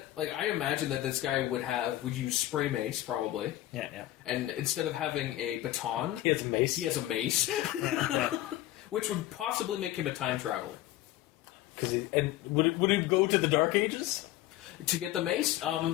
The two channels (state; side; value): quieter; right; 15.1 dB